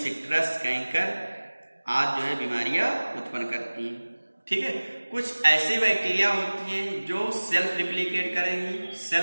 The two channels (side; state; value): both; inverted; correlation -1.00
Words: कैंकर आदि जो है बीमारियां उत्पन्न करती हैं। ठीक है, कुछ ऐसे बैक्टीरिया होती हैं जो सेल्फ रिप्लिकेट करेंगी,